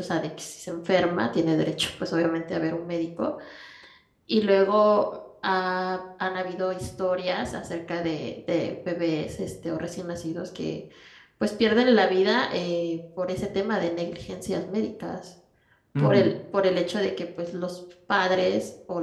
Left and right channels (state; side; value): identical; both; correlation 1.00